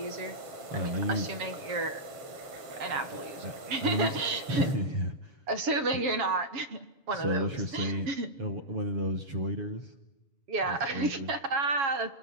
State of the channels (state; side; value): late; left; 7.2 ms